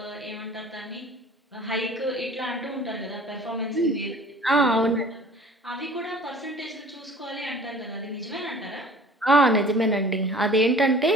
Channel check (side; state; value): both; normal; correlation 0.47